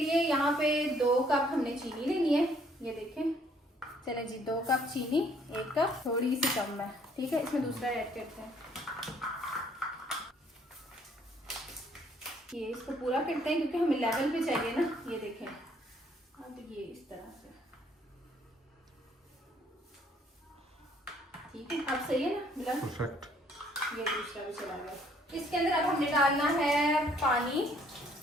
यहाँ पे 2 कप हमने चीनी लेनी है, ये देखें। चले जी, 2 कप चीनी, 1 कप थोड़ी सी कम है, ठीक है। इसमें दूसरा ऐड करते हैं, ये इसको पूरा करते हैं क्योंकि हमें लेवल पे चाहिए ना, ये देखें। अब ये इस तरह से ठीक है, अब सही है ना बिलाल? परफेक्ट। ये दूसरा भी चला गया। इसके अंदर अब हमने डालना है पानी,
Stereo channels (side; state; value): both; normal; correlation 0.64